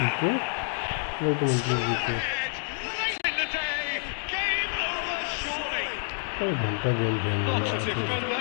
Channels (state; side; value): silent; right; digital silence